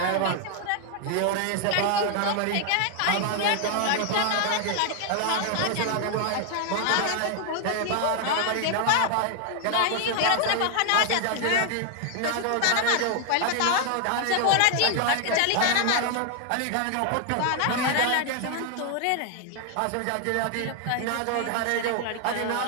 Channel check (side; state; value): both; different; correlation 0.00